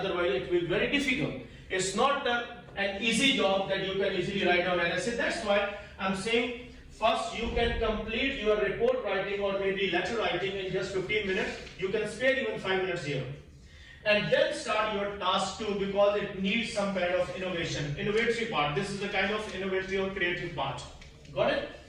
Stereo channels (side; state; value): both; identical; correlation 1.00